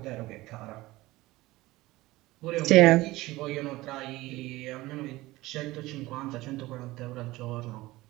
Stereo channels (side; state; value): left; quieter; 18.9 dB